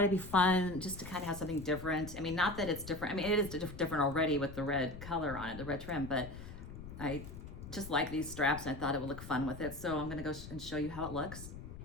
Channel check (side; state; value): left; noise; rumble, 12 dB below the sound